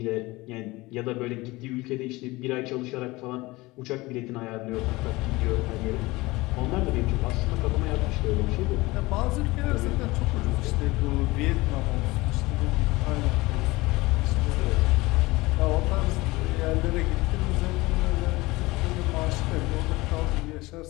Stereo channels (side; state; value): right; quieter; 21.2 dB